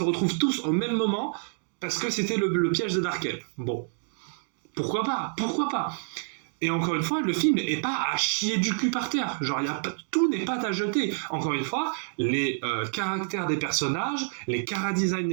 retrouvent tous au même moment, parce que c'était le piège de Darkel. Bon, pourquoi pas. Et encore une fois, le film n'est pas à chier du cul par terre. Genre, tout n'est pas à jeter. Encore une fois, les caractères des personnages, les chara-design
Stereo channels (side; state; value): left; silent; 60 dB below the other